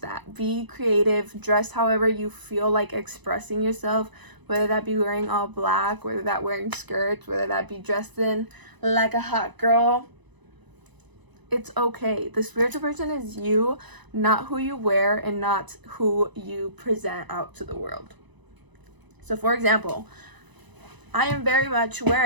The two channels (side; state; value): left; late; 1.0 ms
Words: Be creative, dress however you feel like expressing yourself, whether that be wearing all black, whether that wearing skirts, whether that be dressed in like a hot girl. It's okay. The spiritual person is you, not who you wear and not who you present out to the world. So for example, I am very much